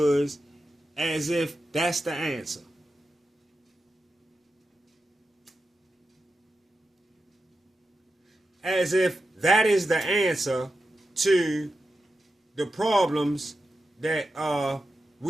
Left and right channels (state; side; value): normal; both; correlation 0.90